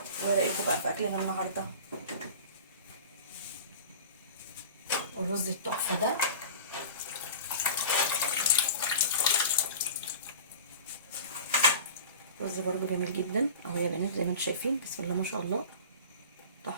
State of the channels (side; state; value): both; inverted; correlation -0.37